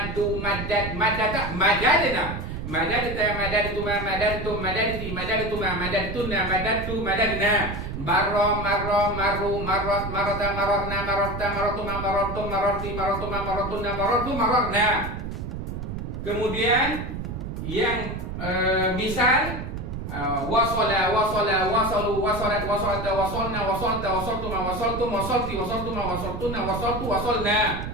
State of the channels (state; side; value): noise; right; rumble, 6 dB below the sound